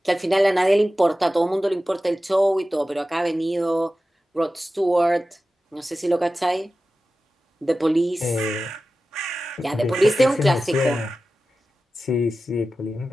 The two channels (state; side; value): normal; both; correlation 0.94